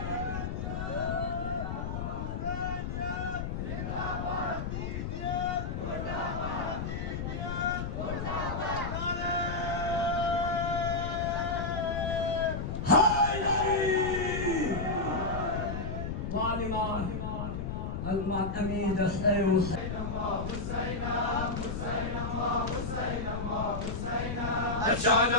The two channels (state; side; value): noise; left; rumble, 4 dB below the sound